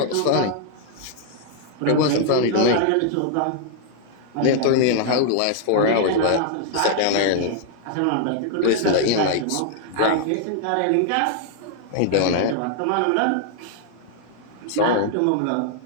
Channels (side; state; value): both; different; correlation 0.00